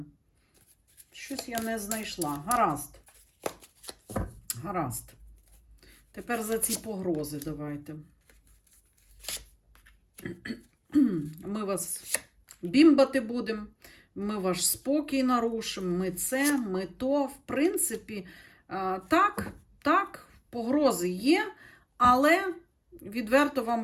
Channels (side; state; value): both; identical; correlation 1.00